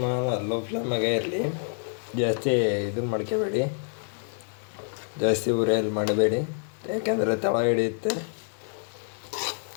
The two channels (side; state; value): right; silent; 60 dB below the other